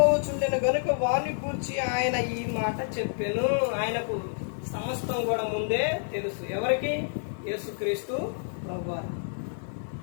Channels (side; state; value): right; silent; 59 dB below the other